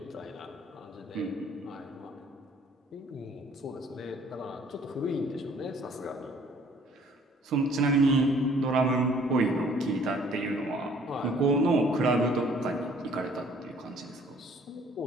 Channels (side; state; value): both; normal; correlation 0.58